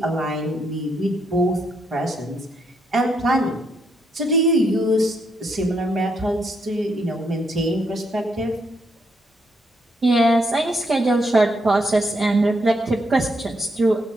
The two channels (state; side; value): normal; both; correlation 0.76